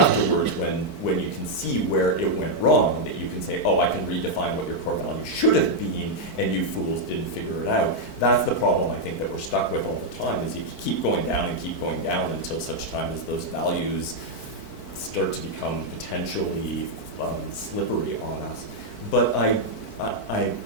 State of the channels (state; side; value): late; right; 4.5 ms